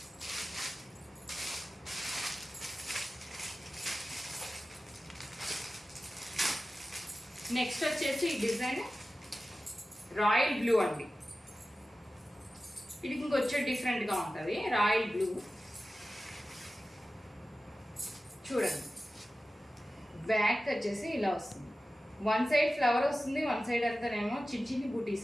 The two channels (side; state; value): both; normal; correlation 0.95